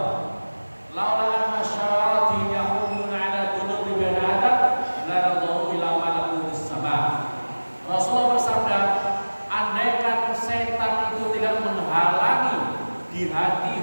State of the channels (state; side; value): inverted; both; correlation -1.00